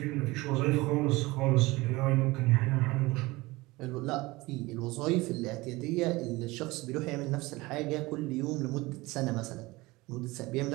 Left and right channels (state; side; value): quieter; left; 21.5 dB